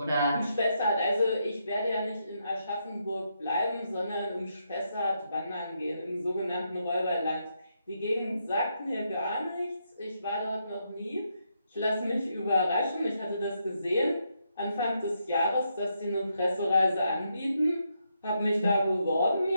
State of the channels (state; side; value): inverted; both; correlation -0.80